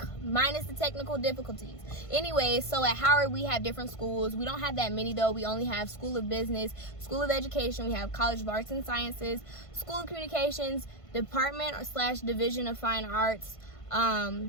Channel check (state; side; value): late; right; 1.5 ms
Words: minus the technical difficulties. Anyway, so at Howard we have different schools. We don't have that many though. We only have School of Business, School of Education. We have College of Arts and Sciences, School of Communications, Department / Division of Fine Arts,